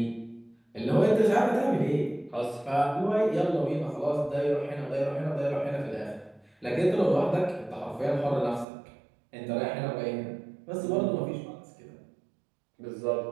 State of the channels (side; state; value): left; drops out; at 8.7 s